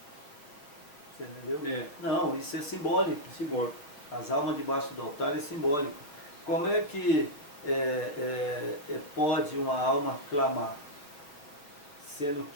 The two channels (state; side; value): late; right; 6.8 ms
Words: Você entendeu? Não, isso é simbólico. Simbólico. As almas debaixo do altar é simbólico. Como é que pode uma alma clamar? Sendo